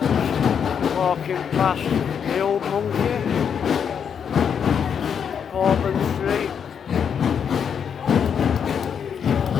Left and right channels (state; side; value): quieter; right; 7.5 dB